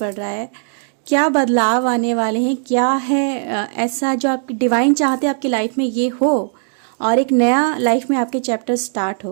रहा है, क्या बदलाव आने वाले हैं, क्या है ऐसा जो आप डिवाइन चाहते हैं आपकी लाइफ में ये हो और एक नया लाइफ में आपके चैप्टर स्टार्ट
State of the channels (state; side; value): silent; left; digital silence